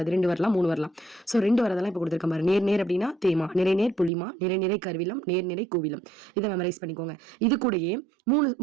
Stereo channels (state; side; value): drops out; left; at 4.1 s